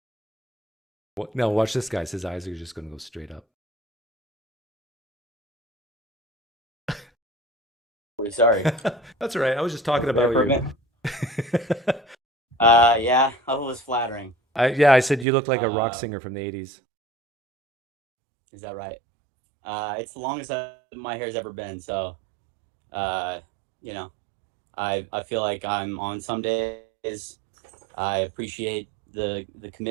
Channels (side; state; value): left; drops out; at 15.2 s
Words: What? No, watch this guy. His eyes are just going to go straight up. Sorry. That's all right. I was just talking about you. Yeah, that was flattering. I said you look like a rock singer from the 80s. Is that right? It's the longest my hair's ever been, so you know, I feel like I'm on some days. I appreciate the